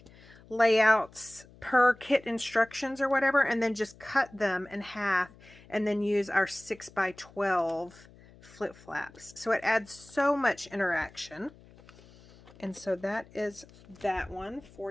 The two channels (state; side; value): noise; left; hum, 24 dB below the sound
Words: layouts per kit instructions or whatever, and then just cut them in half and then use our 6x12 flip flaps. So it adds so much interaction. And so that is that one